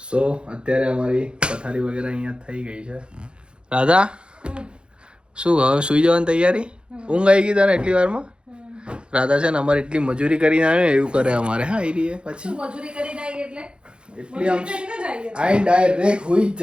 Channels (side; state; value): left; late; 0.054 ms